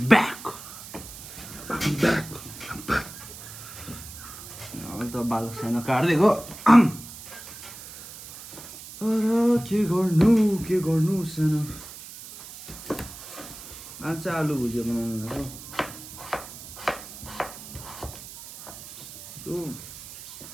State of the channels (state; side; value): noise; right; hiss, 14 dB below the sound